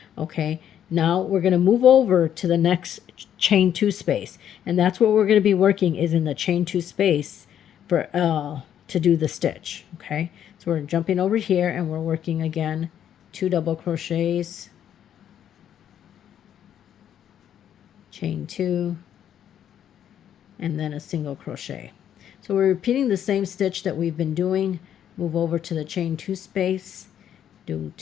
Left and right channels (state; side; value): quieter; right; 9.9 dB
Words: Okay, now we're going to move over to the next chain 2 space, and that's what we're going to be working is in the chain 2 space for to do the stitch. Okay, so we're jumping over here and we're working again 2 double crochets, chain 2, and then a single crochet. So we're repeating the same stitch that we've been doing. Move over to the chain 2 space, do